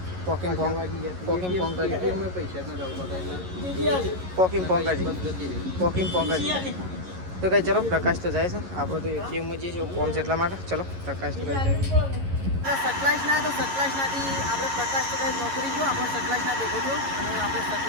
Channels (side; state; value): left; late; 11 ms